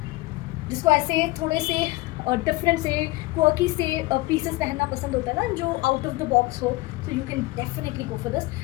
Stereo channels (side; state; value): right; quieter; 20.6 dB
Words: जिसको ऐसे थोड़े से डिफरेंट से क्वर्की से पीसेस पहनना पसंद होता है ना, जो आउट ऑफ द बॉक्स हो, तो you can definitely go for this.